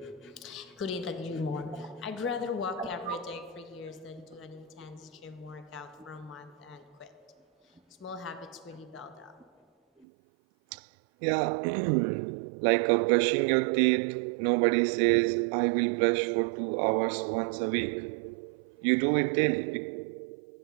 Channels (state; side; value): drops out; left; at 10.1 s